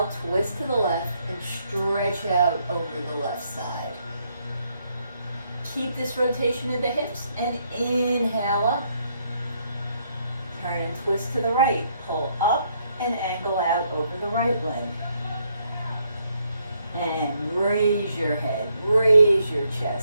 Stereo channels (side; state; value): both; inverted; correlation -0.73